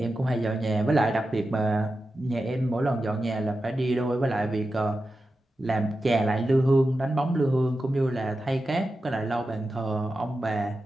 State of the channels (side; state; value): both; normal; correlation 0.91